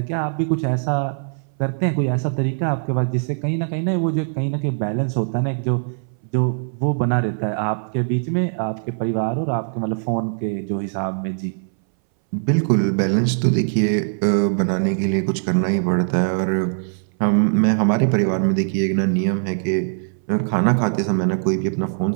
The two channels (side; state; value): left; silent; 62 dB below the other